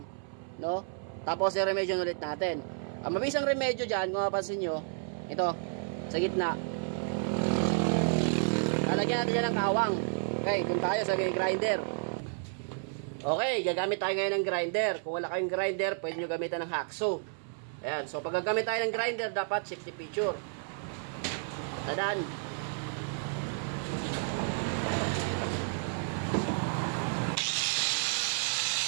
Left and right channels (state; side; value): silent; left; 57 dB below the other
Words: no? Tapos i-remedyohan ulit natin. Ang mabisang remedyo dyan, kung mapapansin nyo, ito, sa gitna. Lalagyan natin dyan ng kawang. Okay, kung tayo sa grinder. Okay, gagamit tayo ngayon ng grinder. Kung wala kayong grinder, pwede nyo gamitan ng hacksaw. Ayan, so pag gagamit tayo ng grinder, dapat safety feature. Tadaan.